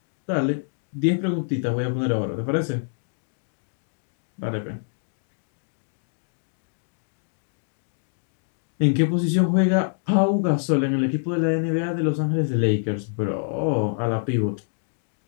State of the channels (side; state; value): right; silent; digital silence